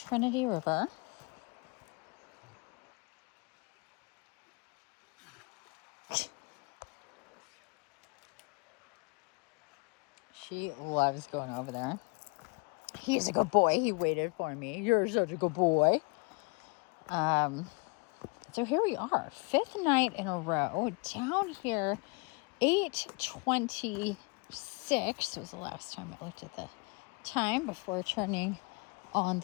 River. She loves going over there. He's a good boy. He waited for me. You're such a good boy. So here we are, 5th night in a row, down here, 8:26 was the last time I looked at the time before turning on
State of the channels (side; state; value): right; quieter; 30.7 dB